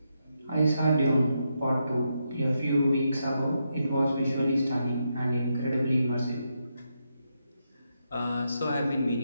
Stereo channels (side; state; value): both; inverted; correlation -0.83